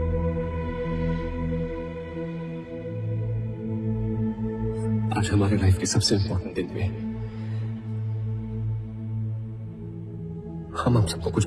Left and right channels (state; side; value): identical; both; correlation 1.00